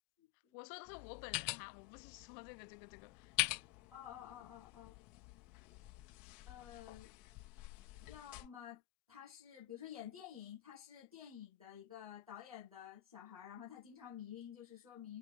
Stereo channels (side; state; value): right; quieter; 15.7 dB